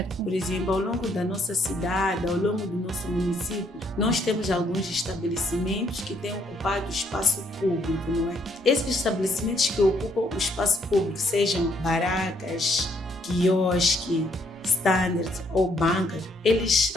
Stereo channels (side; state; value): both; normal; correlation 0.69